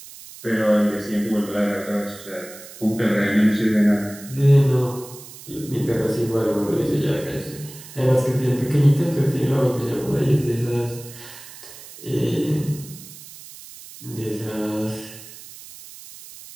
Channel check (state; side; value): noise; right; hiss, 17 dB below the sound